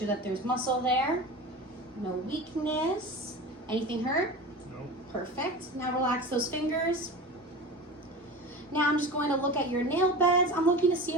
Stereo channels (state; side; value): normal; both; correlation 0.31